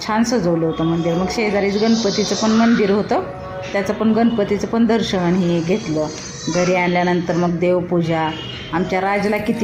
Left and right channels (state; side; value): identical; both; correlation 1.00